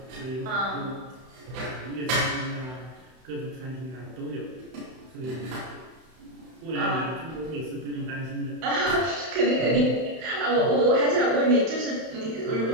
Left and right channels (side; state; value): left; late; 31 ms